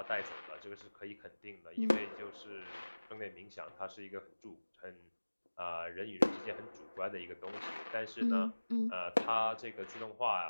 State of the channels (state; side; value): inverted; both; correlation -1.00